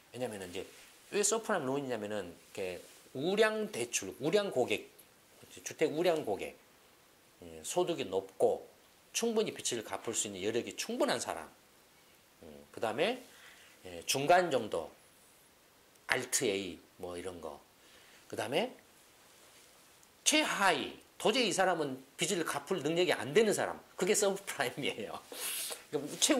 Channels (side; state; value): both; identical; correlation 1.00